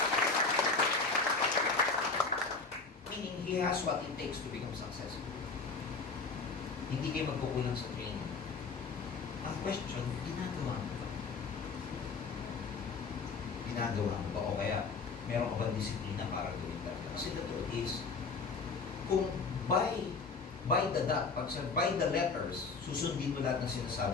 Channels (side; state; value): right; quieter; 4.4 dB